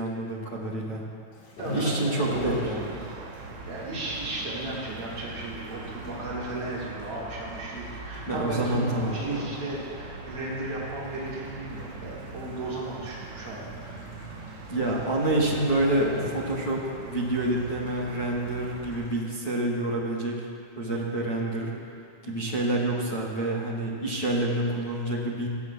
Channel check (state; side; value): late; right; 9.1 ms